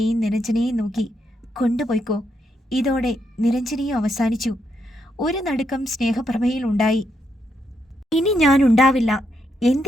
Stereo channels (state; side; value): normal; both; correlation 0.79